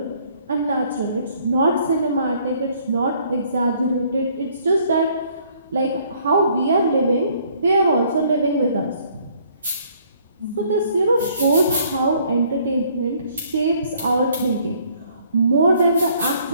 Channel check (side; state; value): both; inverted; correlation -0.62